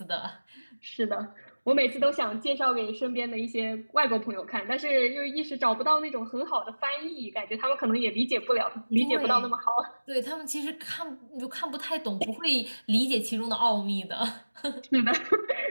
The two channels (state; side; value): inverted; both; correlation -1.00